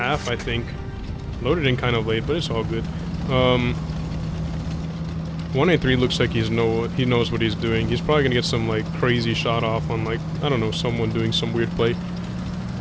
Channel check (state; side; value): identical; both; correlation 1.00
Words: I think. Loaded in kind of late, but it's all good. 183 looks like he knows what he's doing. He's probably going to get some, like, crazy shot off on, like, I don't know, someone doing some weird play.